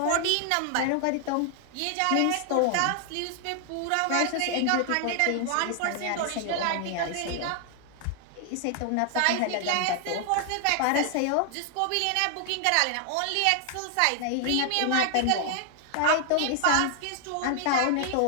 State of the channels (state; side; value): different; both; correlation 0.00